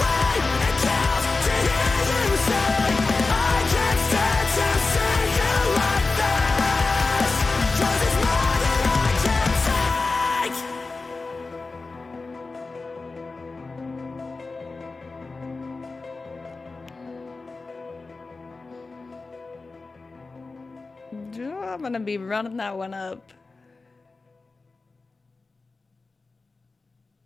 I'm gonna be running that one up.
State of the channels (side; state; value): right; quieter; 3.8 dB